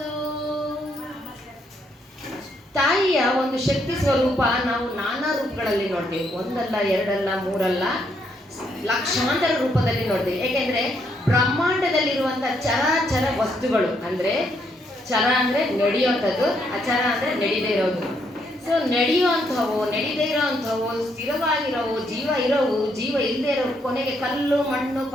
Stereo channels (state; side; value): normal; both; correlation 0.74